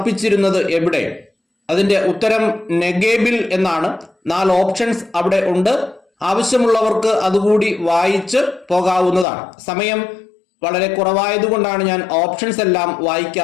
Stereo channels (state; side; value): drops out; right; at 9.2 s